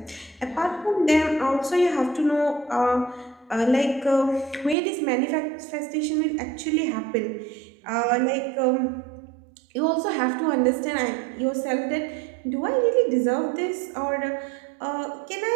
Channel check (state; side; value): drops out; left; at 4.8 s